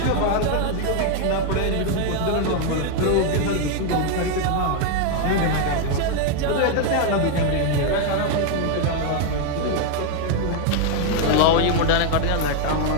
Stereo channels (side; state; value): both; different; correlation 0.01